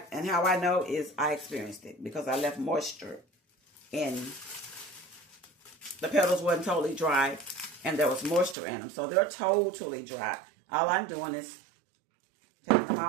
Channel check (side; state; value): left; drops out; at 8.6 s